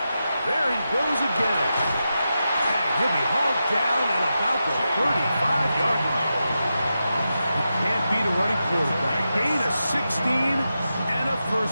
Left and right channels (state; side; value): inverted; both; correlation -0.89